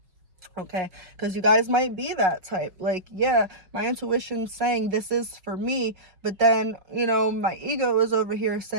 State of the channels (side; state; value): left; late; 5.4 ms